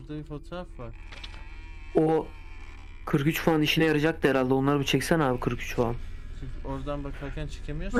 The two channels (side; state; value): both; identical; correlation 1.00